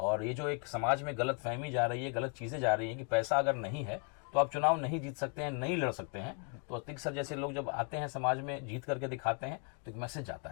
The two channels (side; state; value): right; quieter; 38.5 dB